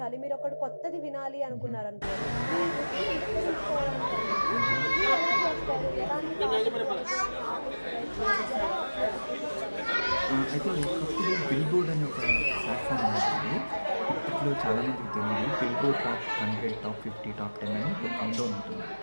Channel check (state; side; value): inverted; both; correlation -1.00